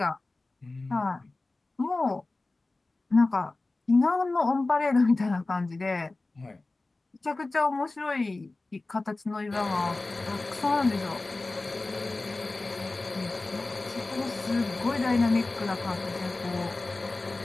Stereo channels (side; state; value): right; quieter; 3.2 dB